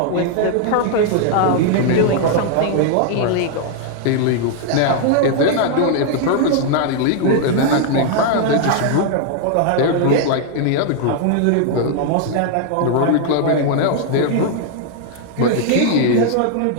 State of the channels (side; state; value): both; different; correlation 0.00